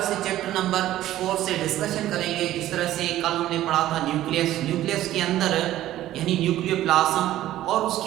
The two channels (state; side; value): quieter; left; 13.9 dB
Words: से chapter number 4 से discussion करेंगे। जिस तरह से कल हमने पढ़ा था न्यूक्लियस के अंदर यानी न्यूक्लियोप्लाज्म और